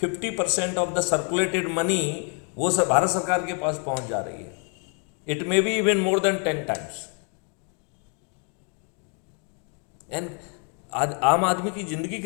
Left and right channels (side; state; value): right; quieter; 39.7 dB